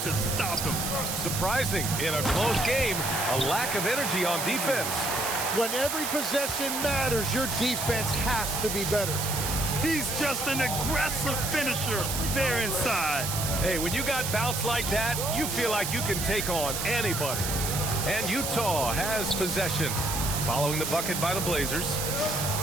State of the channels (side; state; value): right; noise; hiss, 3 dB below the sound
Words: to stop him. Surprising in a close game, a lack of energy on defense. When every possession matters, your defense has to be better. He's just an aggressive finisher there inside. Hey, when you got bounce like that, you feel like you can take on anybody. And Utah has possession. Following the bucket by the Blazers.